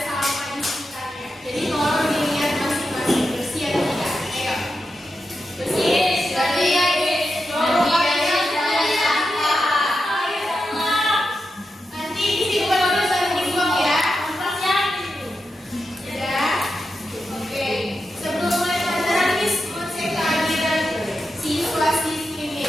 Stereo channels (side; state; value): both; normal; correlation 0.88